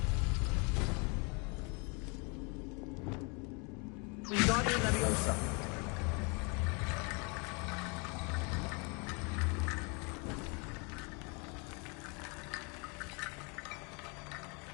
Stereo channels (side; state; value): right; quieter; 32.1 dB